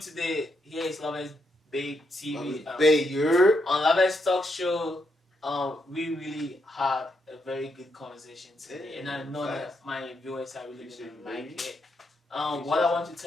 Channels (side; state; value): both; normal; correlation 0.79